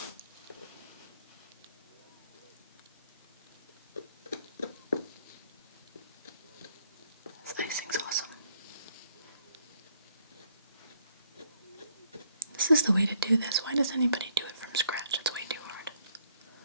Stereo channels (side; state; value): both; inverted; correlation -0.69